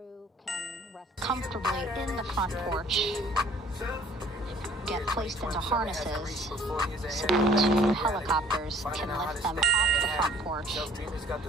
can rest comfortably in the front porch, get placed into harnesses so that 2 helicopters can lift them off the front porch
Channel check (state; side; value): normal; both; correlation 0.55